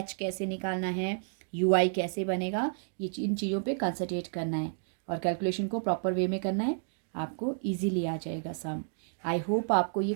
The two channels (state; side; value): silent; left; digital silence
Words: कैसे निकालना है, यूआई कैसे बनेगा, ये इन चीज़ों पे कंसंट्रेट करना है, और कैलकुलेशन को प्रॉपर वे में करना है, आपको इजीली आ जाएगा सम। आई होप आपको ये